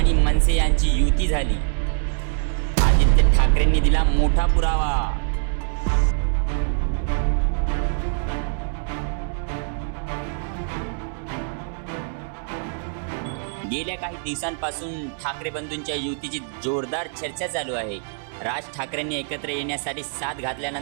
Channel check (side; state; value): left; silent; 63 dB below the other